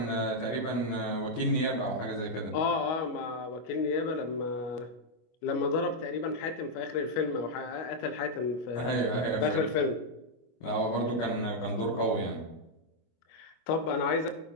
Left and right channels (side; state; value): right; late; 25 ms